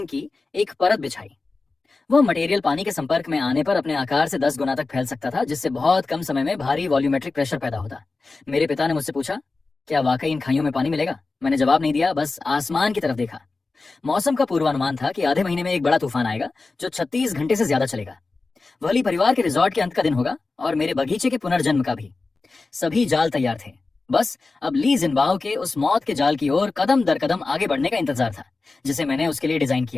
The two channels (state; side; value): quieter; right; 3.8 dB